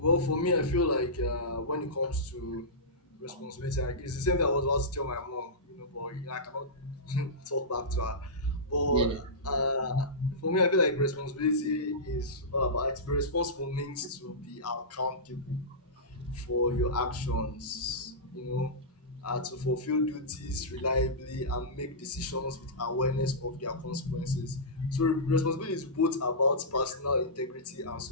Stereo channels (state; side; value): normal; both; correlation -0.16